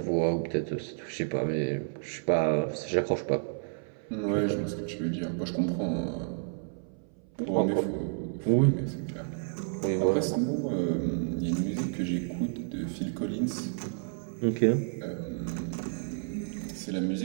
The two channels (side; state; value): left; silent; 57 dB below the other